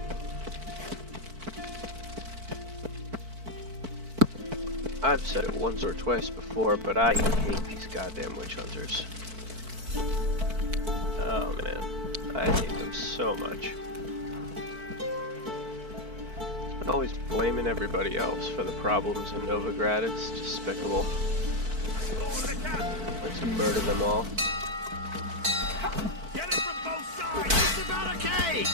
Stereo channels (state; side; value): late; left; 4.5 ms